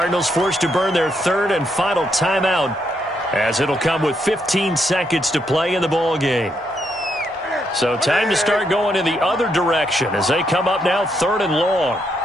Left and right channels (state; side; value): normal; both; correlation 0.77